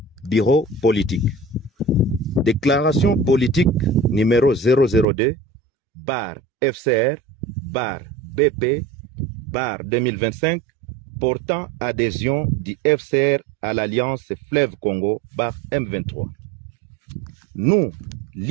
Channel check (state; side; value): drops out; left; at 5.1 s